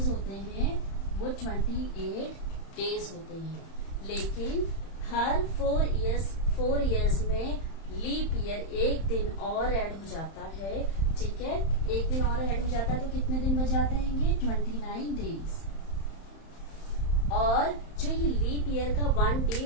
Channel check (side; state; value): right; late; 31 ms